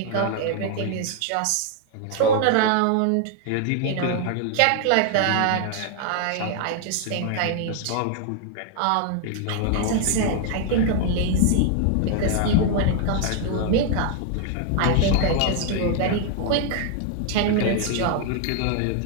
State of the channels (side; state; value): both; different; correlation 0.00